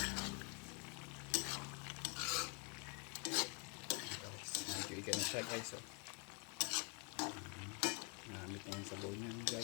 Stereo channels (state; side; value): quieter; right; 33.7 dB